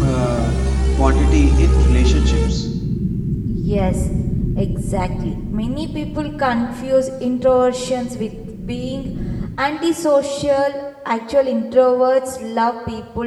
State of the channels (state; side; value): identical; both; correlation 1.00